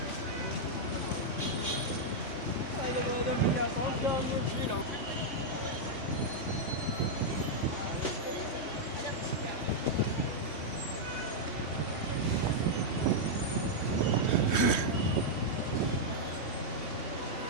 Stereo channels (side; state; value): right; late; 3.2 ms